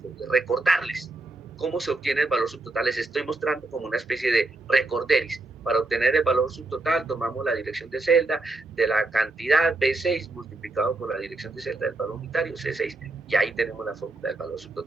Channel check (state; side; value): quieter; left; 3.1 dB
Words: de recordarles cómo se obtiene el valor subtotal. Les estoy mostrando como una especie de recorderis. Para obtener el valor subtotal tomamos la dirección de celda de la cantidad B6 multiplicado por la dirección de celda del valor unitario C6 y ahí tenemos la fórmula del valor